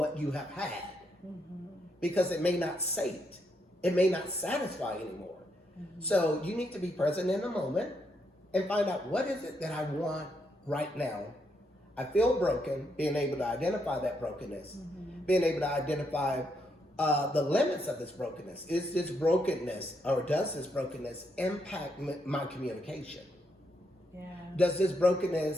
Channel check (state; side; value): normal; both; correlation 0.78